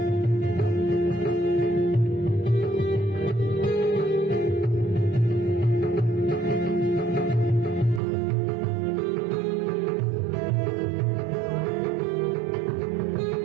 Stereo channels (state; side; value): drops out; left; at 8.0 s